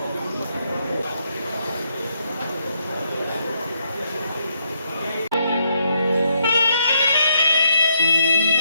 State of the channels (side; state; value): both; inverted; correlation -0.76